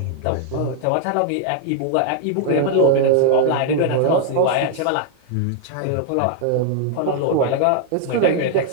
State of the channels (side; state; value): both; different; correlation 0.00